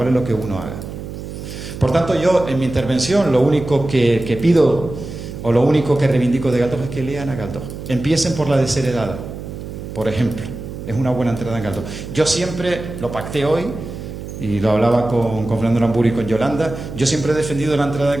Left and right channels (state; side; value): noise; right; hum, 10 dB below the sound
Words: lo que uno haga. Por tanto, yo en mi intervención lo único que pido o lo único que reivindico de Galdós es que lean a Galdós. Empiecen por la desheredada. Por ejemplo, es una buena entrada en Galdós. Yo siempre lo pacté hoy, y lo hablaba con Fernando Aramburu y con Yolanda, yo siempre he defendido la entrada en